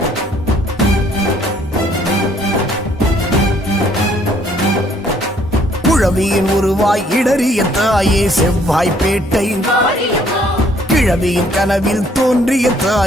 குழவியின் உருவாய் இடறிய தாயே செவ்வாய்ப்பேட்டை, மாரியம்மா கிழவியின் கனவில் தோன்றிய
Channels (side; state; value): both; normal; correlation 0.63